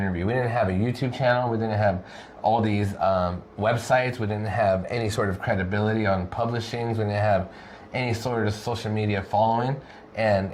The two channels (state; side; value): identical; both; correlation 1.00